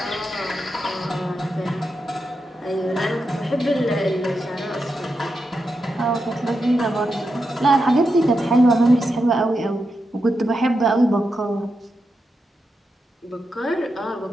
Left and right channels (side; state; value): both; normal; correlation 0.87